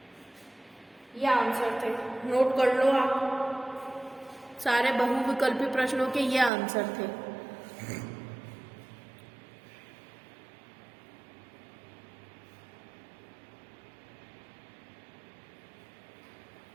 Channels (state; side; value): drops out; left; at 6.5 s